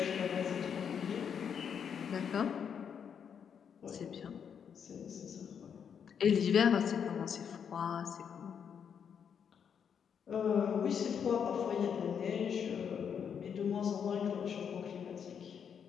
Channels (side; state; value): right; quieter; 7.5 dB